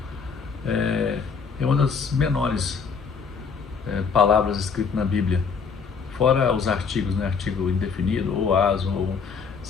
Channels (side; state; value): right; quieter; 5.7 dB